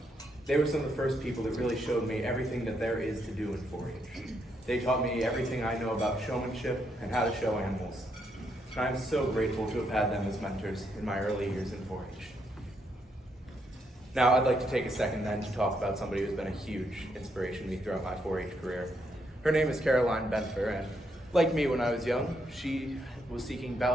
They were some of the first people that really showed me everything that there is to do in 4-H. They taught me everything I know about showmanship and how to show animals. And I am so grateful to have had them as mentors in my early years in 4-H. Now, I'd like to take a second then to talk about somebody who's been a huge inspiration to me throughout my 4-H career. Her name is Caroline Benfer, and like me when I was young, she was seeking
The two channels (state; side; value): normal; both; correlation 0.77